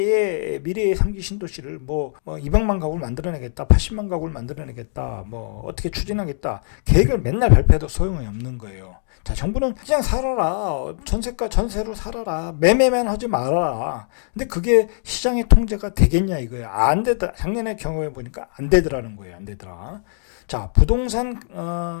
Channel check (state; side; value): silent; right; digital silence